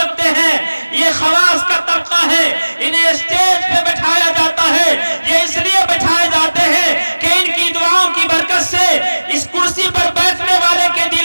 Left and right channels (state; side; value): inverted; both; correlation -1.00